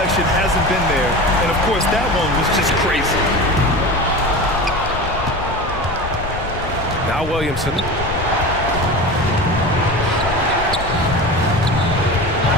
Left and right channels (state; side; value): noise; left; rumble, 8 dB below the sound